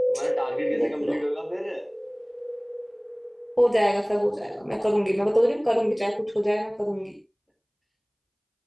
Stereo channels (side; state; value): both; identical; correlation 1.00